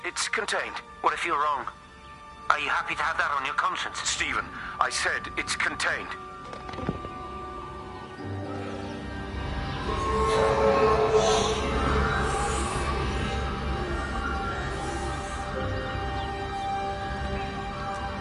it's contained. What if you're wrong? Are you happy to have that on your conscience? Stephen, I said it's contained.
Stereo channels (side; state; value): both; identical; correlation 1.00